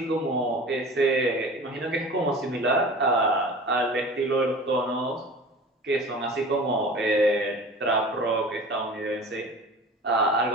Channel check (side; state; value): both; normal; correlation 0.39